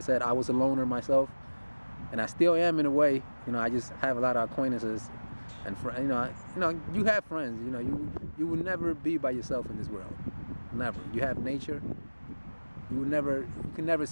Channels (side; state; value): both; inverted; correlation -1.00